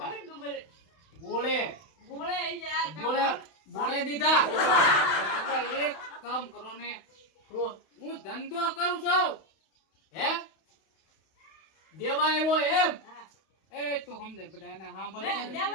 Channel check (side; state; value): right; late; 31 ms